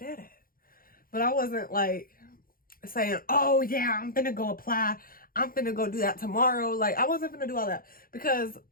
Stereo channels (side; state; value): right; late; 0.42 ms